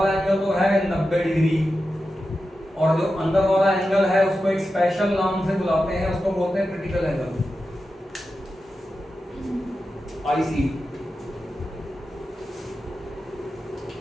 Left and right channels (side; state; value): both; normal; correlation 0.91